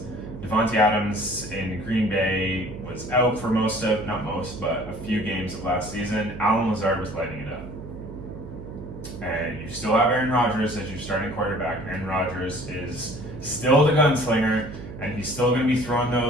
Devontae Adams in Green Bay was out for but a few games of last season. Allen Lazard was lighting it up. And you still have Aaron Rodgers as your starting quarterback. Aaron Rodgers is still the gunslinger, and he's still going to be throwing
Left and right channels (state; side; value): noise; right; hum, 12 dB below the sound